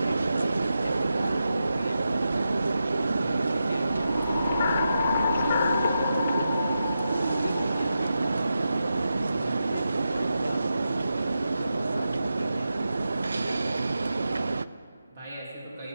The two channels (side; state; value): both; inverted; correlation -0.88